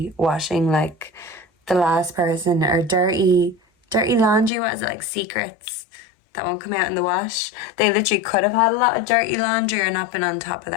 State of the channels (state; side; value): drops out; right; at 4.5 s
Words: washing like the last person, or dirty laundry. What is it, like secrets that won't come out in the wash? They literally could have had a lot of dirty laundry or not been on top of